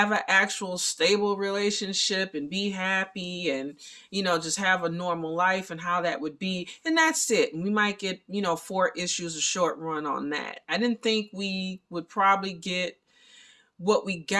an actual stable relationship and be happy and just have a normal life, and how that would be, and that's it. And we might get 4 issues, a short run on that. I didn't think we would probably get what we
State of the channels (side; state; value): both; identical; correlation 1.00